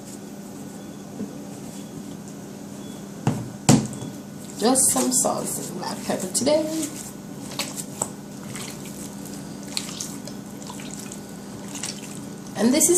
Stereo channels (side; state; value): both; identical; correlation 1.00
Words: Just some salt and black pepper today. And this